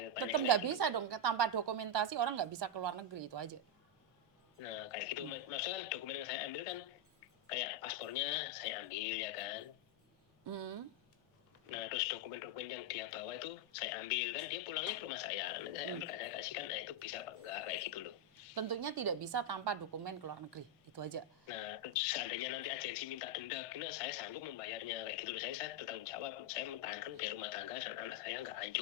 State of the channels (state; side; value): normal; both; correlation 0.02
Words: tanyakan. Tetap nggak bisa dong, tanpa dokumentasi orang nggak bisa keluar negeri, itu aja. Nah kayak gitu, maksudnya kan dokumen yang saya ambil kan kayak paspornya saya ambil ya kan. Nah terus dokumen-dokumen yang dia bawa itu saya ambil, kan dia pulangnya ke rumah saya, nanti saya ambil saya kasihkan. Nah itu bisa apa enggak kayak gitu loh. Tentunya tidak bisa tanpa dokumen keluar negeri, itu aja. Nah seandainya nanti agensi minta denda, kena saya sanggup membayarnya kayak gitu loh. Saya bertanggung jawab, saya mempertahankan biar rumah tangga dan anak saya nggak